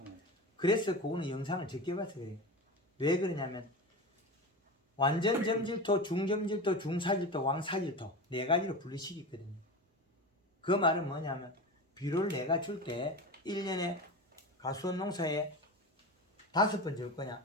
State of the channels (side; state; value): both; normal; correlation 0.27